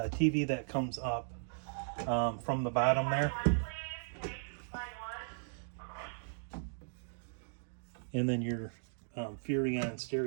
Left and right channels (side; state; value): left; silent; digital silence